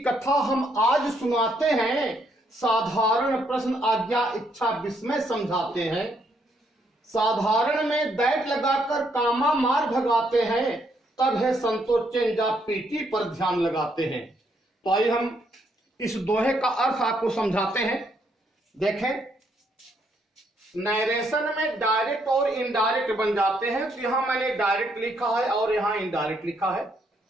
कथा हम आज सुनाते हैं। साधारण प्रश्न आज्ञा इच्छा विस्मय समझाते हैं। साधारण में दैट लगाकर कामा मार भगाते हैं, तब है संतोष चेंजा पीटी पर ध्यान लगाते हैं। तो आइए हम इस दोहे का अर्थ आपको समझाते हैं। देखें, नरेशन में डायरेक्ट और इनडायरेक्ट बन जाते हैं। तो यहां मैंने डायरेक्ट लिखा है और यहां इनडायरेक्ट लिखा है।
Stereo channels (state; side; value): normal; both; correlation 0.73